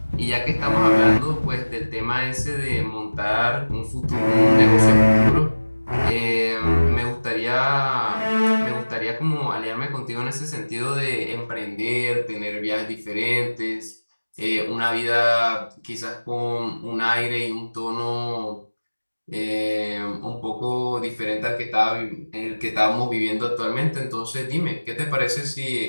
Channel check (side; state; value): both; inverted; correlation -1.00